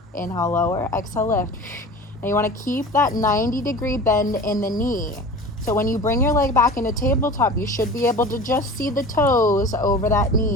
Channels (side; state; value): both; normal; correlation 0.37